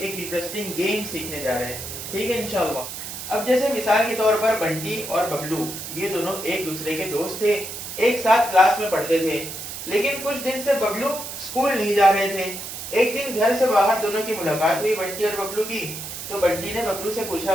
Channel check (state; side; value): noise; right; hiss, 8 dB below the sound